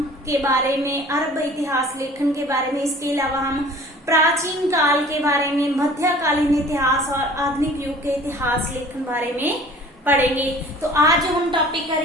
के बारे में, अरब इतिहास लेखन के बारे में। इसके अलावा हम प्राचीन काल के बारे में, मध्यकालीन इतिहास और आधुनिक युग के इतिहास लेखन बारे में पढ़ेंगे। तो आज जो हम टॉपिक कर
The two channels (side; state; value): both; normal; correlation 0.48